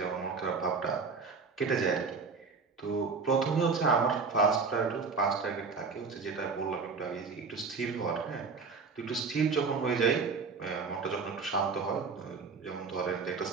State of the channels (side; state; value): left; quieter; 4.8 dB